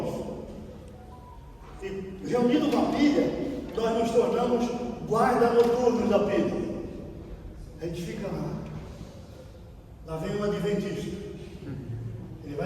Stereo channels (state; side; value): identical; both; correlation 1.00